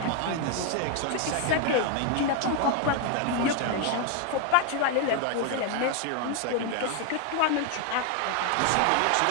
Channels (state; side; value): different; both; correlation 0.01